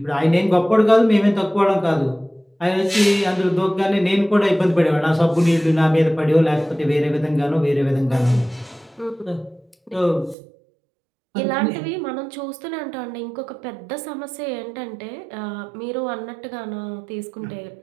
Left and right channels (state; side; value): drops out; left; at 10.4 s